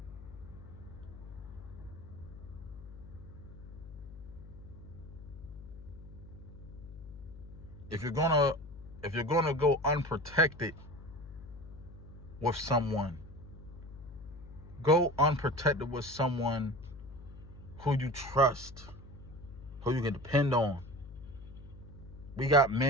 If you're gonna go unprotected with someone, go unprotected with someone who you trust, who you can depend on. We got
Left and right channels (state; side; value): noise; left; hum, 15 dB below the sound